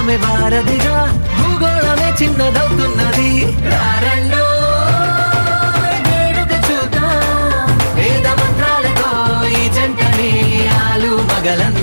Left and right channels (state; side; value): inverted; both; correlation -1.00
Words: వారధిగా, భూగోళమే చిన్నదవుతున్నది. రారండో వేడుక చూద్దాం, వేద మంత్రాలతో ఈ జంటని ఆలు